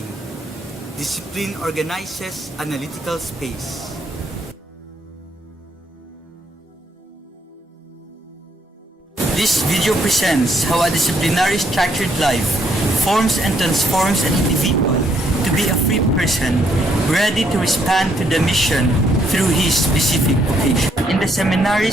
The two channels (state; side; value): normal; both; correlation 0.72